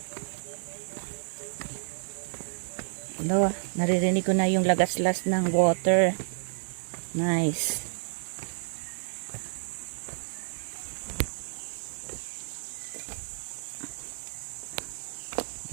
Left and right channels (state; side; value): silent; left; digital silence